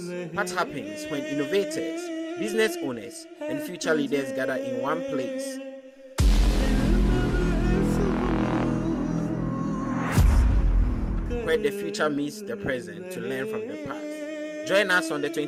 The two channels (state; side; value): identical; both; correlation 1.00